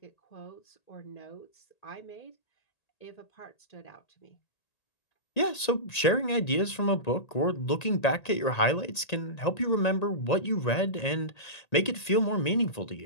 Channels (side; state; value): right; late; 1.8 ms